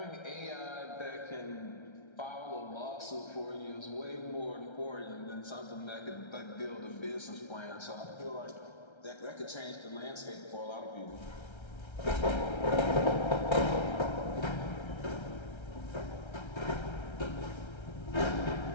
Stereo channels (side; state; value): right; late; 1.3 ms